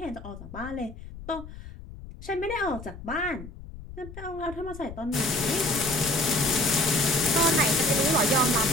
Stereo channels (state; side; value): noise; left; rumble, 14 dB below the sound